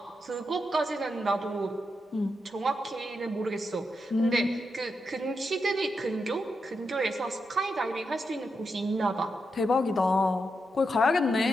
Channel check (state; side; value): normal; both; correlation 0.85